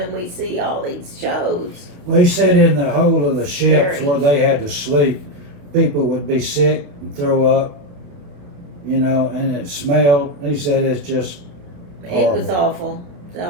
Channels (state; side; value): late; left; 28 ms